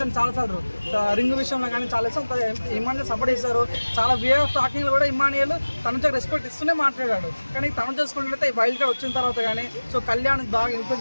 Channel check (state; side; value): inverted; both; correlation -1.00